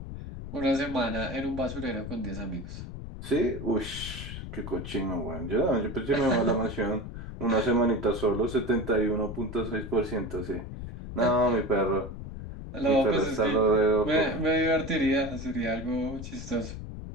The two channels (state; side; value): noise; left; rumble, 9 dB below the sound